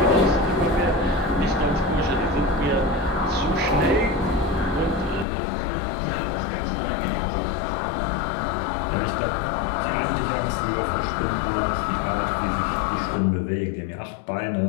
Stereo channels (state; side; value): drops out; right; at 5.2 s